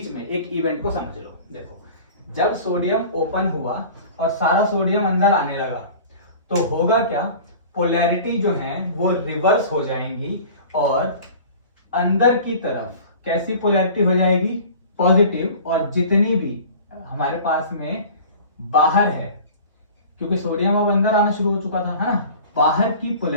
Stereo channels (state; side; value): inverted; both; correlation -0.41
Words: में एक इवेंट को समझ लो। देखो, जब सोडियम ओपन हुआ और सारा सोडियम अंदर आने लगा तो होगा क्या, पोलैरिटी जो है वो रिवर्स हो जाएंगी और अंदर की तरफ कैसी पोलैरिटी हो जाएगी, पॉजिटिव। और जितनी भी हमारे पास में बाहर है, क्योंकि सोडियम अब अंदर आना शुरू हो चुका था, है ना, बाहर की